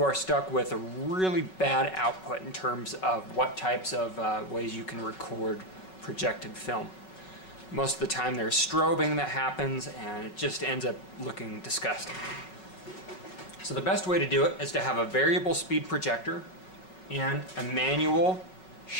are stuck with a really bad output in terms of what types of ways you can record projected film. Most of the time there's strobing that happens, and it just ends up looking disgusting. So the best way to do it is to have a variable speed projector and a manual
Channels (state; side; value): late; right; 5.4 ms